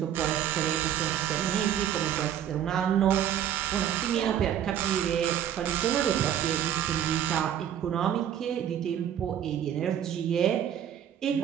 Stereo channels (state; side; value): quieter; left; 10.1 dB